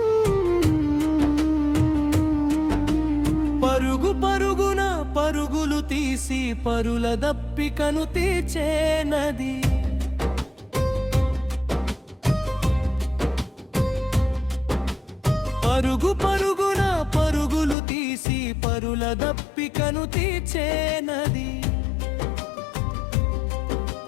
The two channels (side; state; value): right; drops out; at 17.8 s